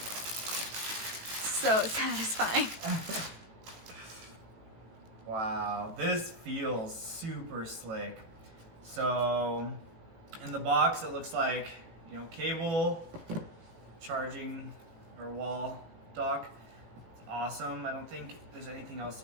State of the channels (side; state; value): left; late; 18 ms